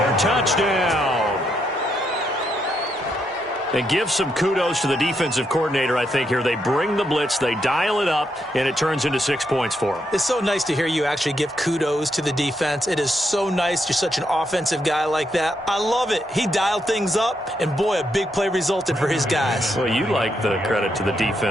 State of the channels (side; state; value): both; normal; correlation 0.79